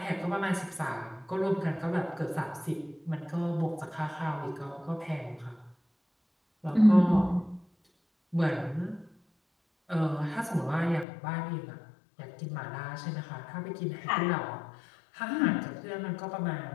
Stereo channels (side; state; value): right; drops out; at 11.1 s